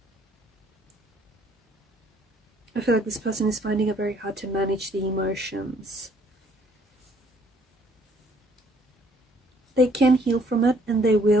I feel like this person is finding it very hard to manage the emotions. They can heal from it, and they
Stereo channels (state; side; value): normal; both; correlation 0.63